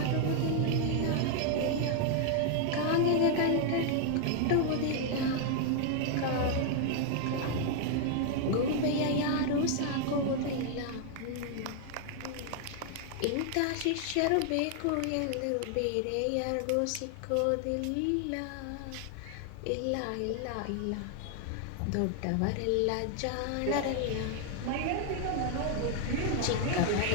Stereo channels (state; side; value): different; both; correlation 0.00